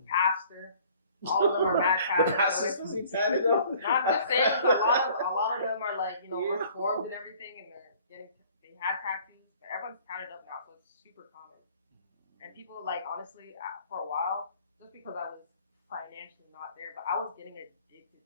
pastor. All of them are mad the tatted. pastor's supposed to be tatted up? No, I'm just saying, 'cause a lot of them are like, reformed and everything, and they had tattoos, but everyone's tatted up now, so it's super common. And people like, honestly, for a while, just because I was financially not there, but I was getting addicted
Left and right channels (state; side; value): inverted; both; correlation -0.54